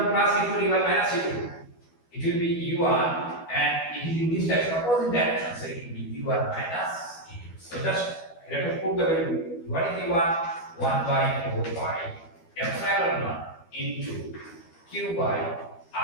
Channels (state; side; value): late; right; 12 ms